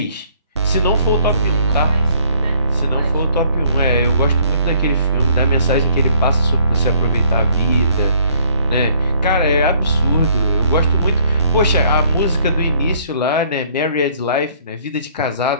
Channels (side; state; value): both; inverted; correlation -0.61